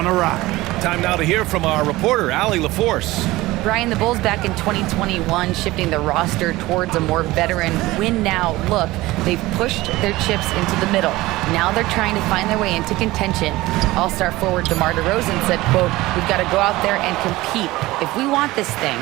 awry. Time now to hear from our reporter, Allie LaForce. Brian, the Bulls back in 2021 shifting the roster towards a more veteran win-now look. They've pushed their chips into the middle. Now they're trying to find their way into contention. All-star forward DeMar DeRozan said, quote, "We've got to go out there and compete. If we want this thing,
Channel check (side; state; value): left; quieter; 18.8 dB